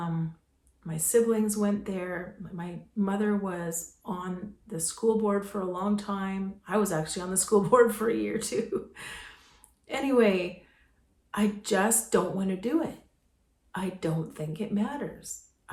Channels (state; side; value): identical; both; correlation 1.00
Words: siblings went there. My mother was on the school board for a long time. I was actually on the school board for a year too. Anyway, I just don't want to do it. I don't think it matters.